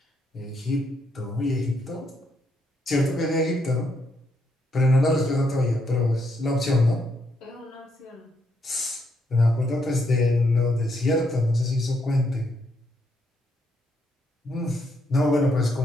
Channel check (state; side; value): normal; both; correlation 0.76